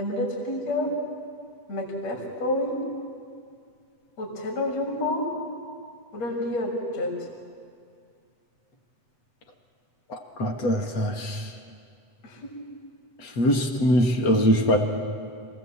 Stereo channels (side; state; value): right; late; 8.2 ms